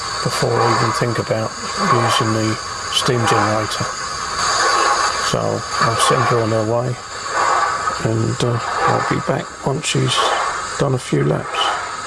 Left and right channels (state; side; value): identical; both; correlation 1.00